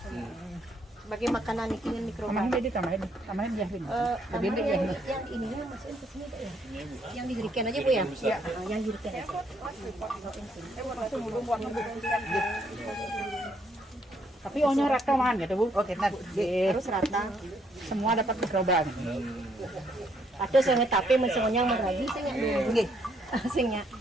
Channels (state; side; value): normal; both; correlation 0.71